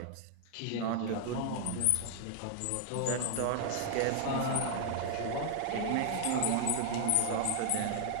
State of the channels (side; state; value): both; different; correlation 0.00